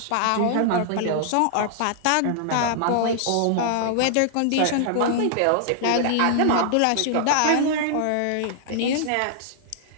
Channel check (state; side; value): different; both; correlation -0.01